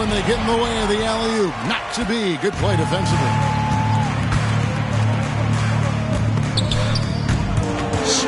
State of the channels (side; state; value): both; identical; correlation 1.00